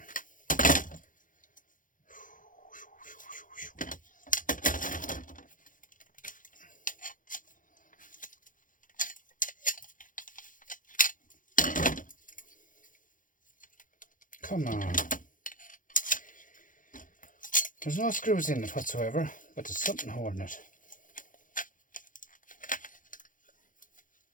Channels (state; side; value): late; right; 0.39 ms